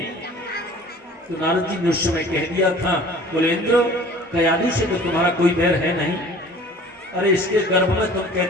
तो नारद जी ने उस समय कह दिया था बोले इंद्र कयादु से तो तुम्हारा कोई बैर है नहीं, अरे इसके गर्भ में तुम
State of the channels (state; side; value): normal; both; correlation 0.47